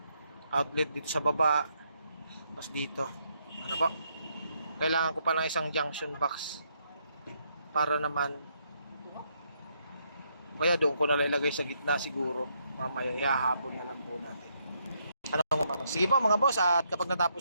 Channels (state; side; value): inverted; both; correlation -0.75